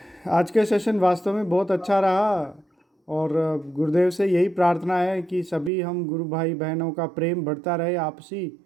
आज के सेशन वास्तव में बहुत अच्छा रहा, और गुरुदेव से यही प्रार्थना है कि सभी हम गुरु भाई बहनों का प्रेम बढ़ता रहे आपसी,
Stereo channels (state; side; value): drops out; left; at 5.7 s